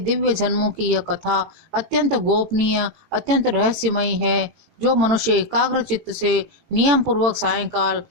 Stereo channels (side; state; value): left; late; 18 ms